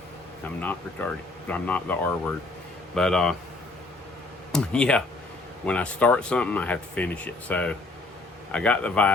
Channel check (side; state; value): right; quieter; 3.2 dB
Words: I'm not retarded. I'm not the R word. But, yeah, when I start something, I have to finish it. So I got the